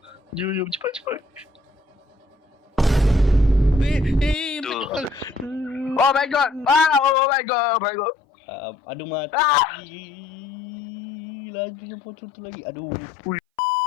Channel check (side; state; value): right; drops out; at 7.2 s